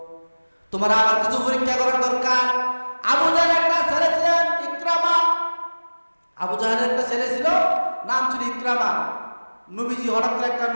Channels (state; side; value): inverted; both; correlation -1.00